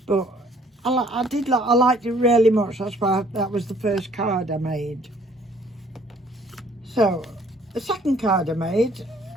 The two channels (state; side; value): normal; both; correlation 0.59